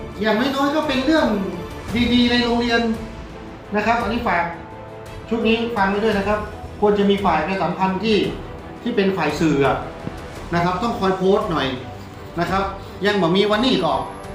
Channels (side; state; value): both; identical; correlation 1.00